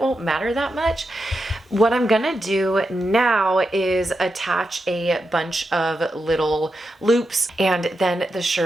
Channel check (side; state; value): both; normal; correlation 0.87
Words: won't matter that much. What I'm gonna do now is attach a bunch of little loops and then the